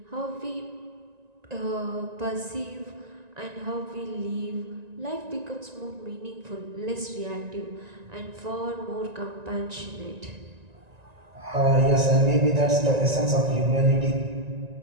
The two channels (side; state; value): left; late; 1.9 ms